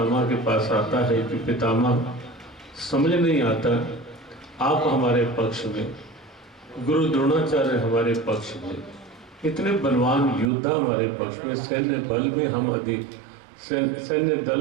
के पास आता है कि पितामह समझ नहीं आता, आप हमारे पक्ष में, गुरु द्रोणाचार्य हमारे पक्ष में, इतने बलवान योद्धा हमारे पक्ष में, सैन्य बल में हम अधिक, सैन्य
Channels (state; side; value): drops out; left; at 10.5 s